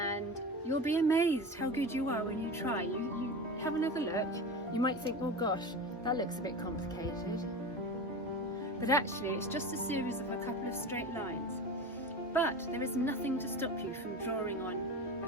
you'll be amazed how good you are when you try. You have another look. You might think, oh gosh, that looks a bit complicated. But actually, it's just a series of a couple of straight lines. But there is nothing to stop you from drawing on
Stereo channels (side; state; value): both; normal; correlation 0.28